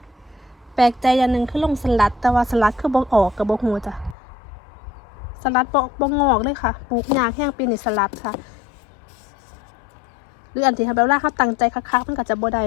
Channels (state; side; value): drops out; right; at 4.2 s